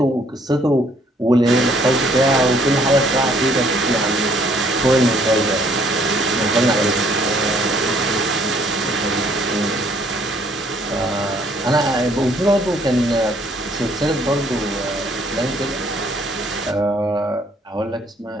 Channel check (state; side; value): normal; both; correlation 0.63